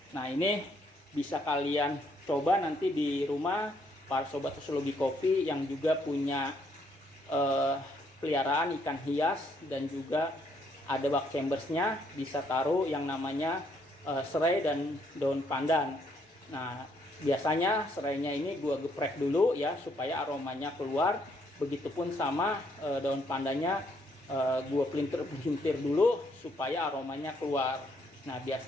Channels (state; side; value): normal; both; correlation 0.70